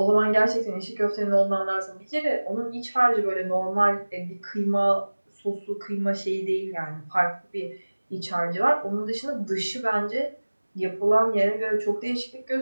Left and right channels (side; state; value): both; inverted; correlation -1.00